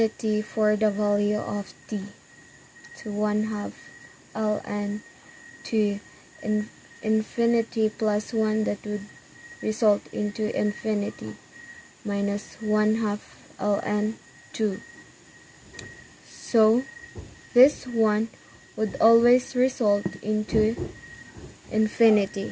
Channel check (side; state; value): both; identical; correlation 1.00